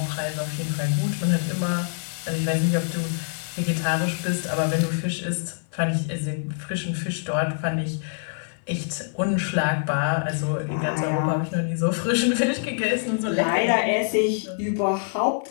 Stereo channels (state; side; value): silent; right; 62 dB below the other